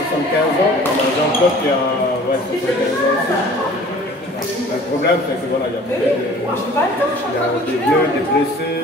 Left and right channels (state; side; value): normal; both; correlation 0.48